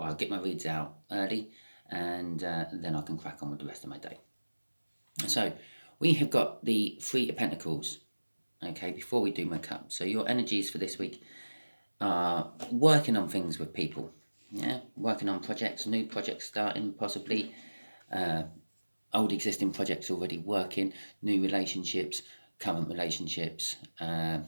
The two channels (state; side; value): inverted; both; correlation -1.00